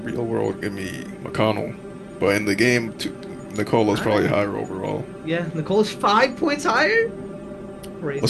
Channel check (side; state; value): both; identical; correlation 1.00